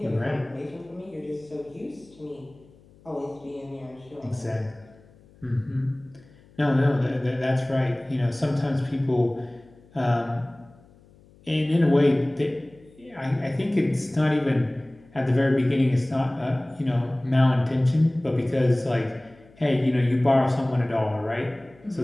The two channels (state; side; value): noise; left; hum, 27 dB below the sound